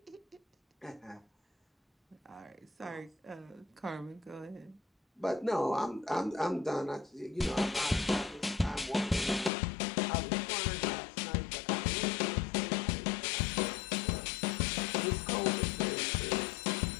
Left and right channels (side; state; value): right; drops out; at 9.5 s